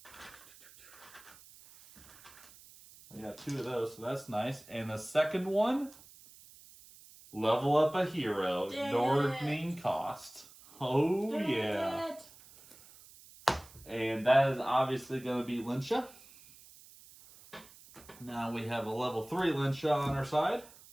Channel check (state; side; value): noise; right; hiss, 22 dB below the sound